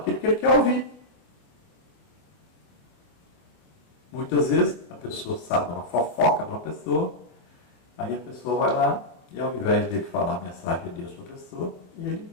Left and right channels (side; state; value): right; late; 25 ms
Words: que ele quer ouvir. Muitas vezes a pessoa sabe uma fofoca de uma pessoa, aí a pessoa vai lá e ao invés dele falar a mensagem de Deus para a pessoa, ele